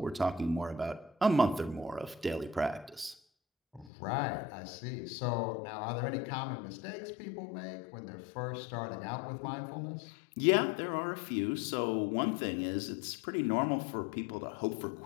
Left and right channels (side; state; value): right; drops out; at 3.9 s